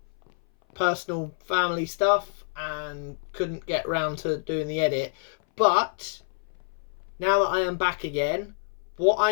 Personal family stuff and couldn't get round to doing the edit. But now that I am back again, what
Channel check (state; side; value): silent; right; 58 dB below the other